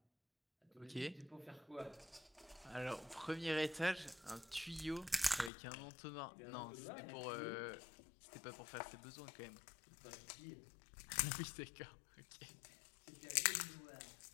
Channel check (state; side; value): drops out; right; at 5.5 s